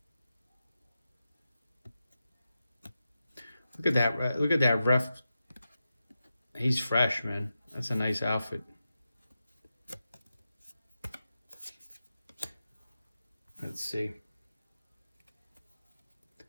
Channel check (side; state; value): both; inverted; correlation -0.90